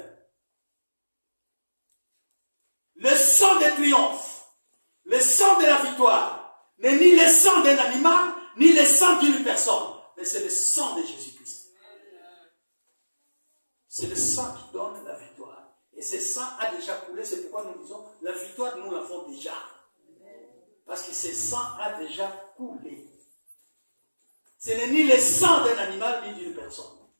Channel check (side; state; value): both; inverted; correlation -1.00